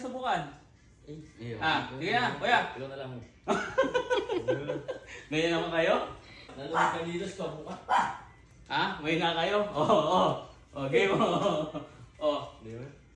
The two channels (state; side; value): identical; both; correlation 1.00